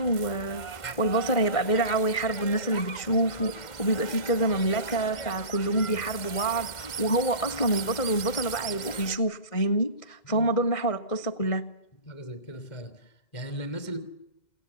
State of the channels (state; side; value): late; right; 2.0 ms